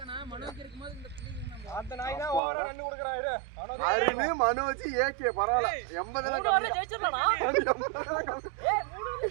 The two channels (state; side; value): drops out; left; at 2.4 s